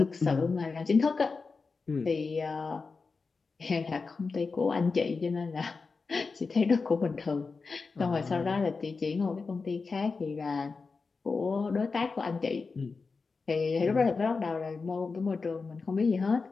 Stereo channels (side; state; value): right; quieter; 4.5 dB